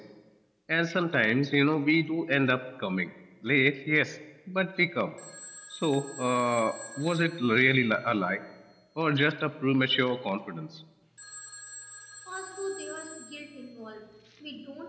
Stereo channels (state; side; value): identical; both; correlation 1.00